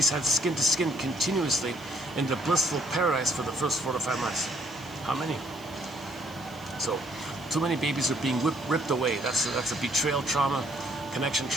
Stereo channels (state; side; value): noise; right; hiss, 24 dB below the sound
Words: had skin to skin continuously in the blissful paradise for the first 4 to 5 months? How many? So too many babies are being ripped away. That's a betrayal trauma, connection